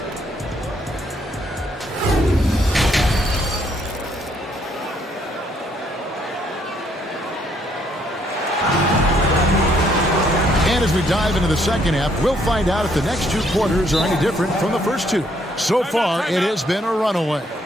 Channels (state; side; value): normal; both; correlation 0.69